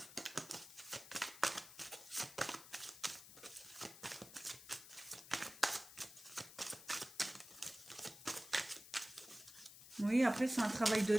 Oui, après, c'est un travail de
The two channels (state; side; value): noise; left; hiss, 16 dB below the sound